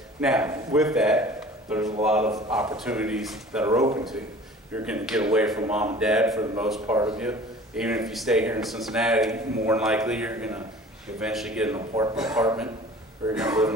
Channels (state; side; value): normal; both; correlation 0.45